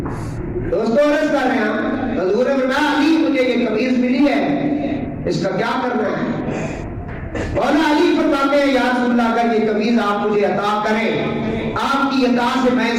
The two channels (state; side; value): identical; both; correlation 1.00